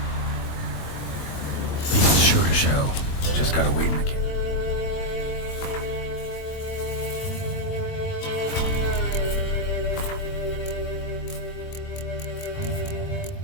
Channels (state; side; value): late; right; 21 ms